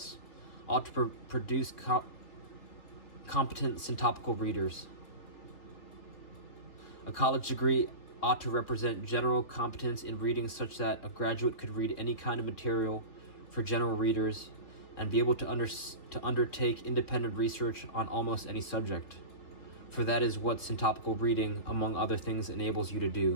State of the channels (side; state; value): right; late; 3.3 ms